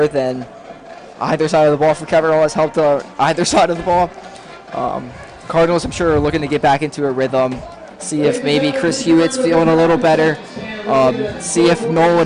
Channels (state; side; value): identical; both; correlation 1.00